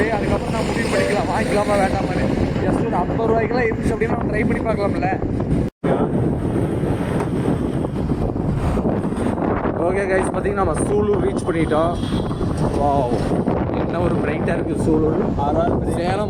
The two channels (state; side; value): identical; both; correlation 1.00